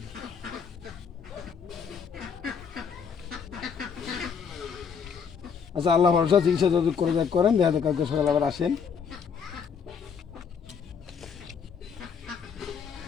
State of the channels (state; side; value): quieter; right; 6.5 dB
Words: আচ্ছা আল্লাহ ভরসা, চিকিৎসা যত করে যাক করেন, দেখা যাক কালকে সকালে আবার আসেন।